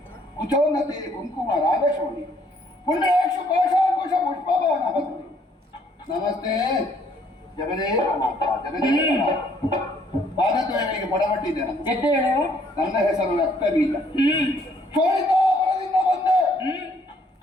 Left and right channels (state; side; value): normal; both; correlation 0.65